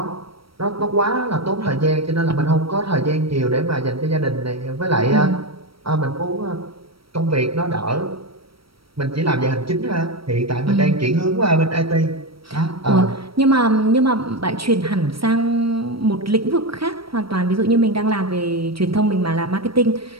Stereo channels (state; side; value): late; left; 0.75 ms